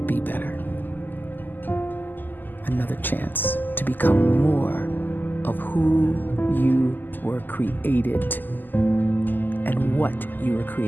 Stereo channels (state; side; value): late; right; 0.088 ms